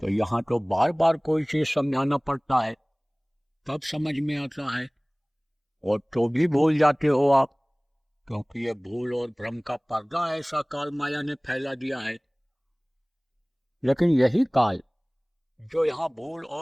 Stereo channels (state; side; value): identical; both; correlation 1.00